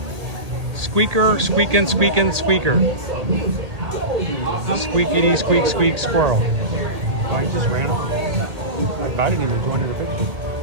Squeaker, squeaking, squeaking, squeaker. Squeakity, squeak, squeak, squirrel. Oh, he just ran off. I invited him to join in the picture.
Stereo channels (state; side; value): late; left; 1.8 ms